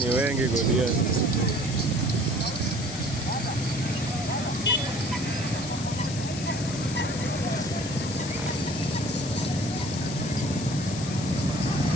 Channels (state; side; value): noise; left; hiss, 10 dB below the sound